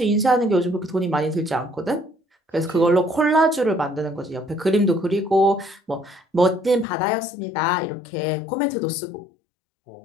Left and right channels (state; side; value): drops out; right; at 6.9 s